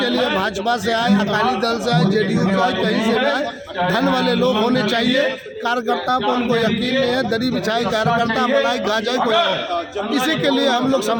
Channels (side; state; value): both; identical; correlation 1.00